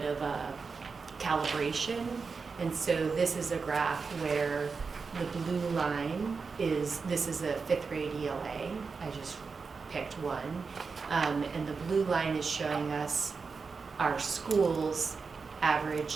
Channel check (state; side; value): quieter; left; 4.9 dB